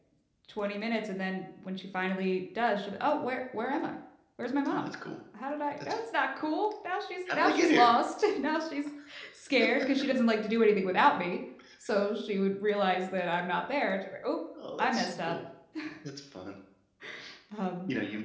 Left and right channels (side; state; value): both; identical; correlation 1.00